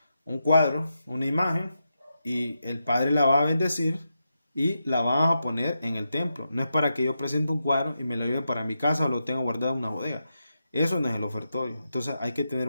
una imagen, y el padre la va a bendecir y la va a poner en el templo. No es para que yo presente un cuadro y me lo lleve para mi casa o lo tenga guardado en una bodega. Eso no es el ofertorio. Entonces hay que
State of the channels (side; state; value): both; inverted; correlation -0.87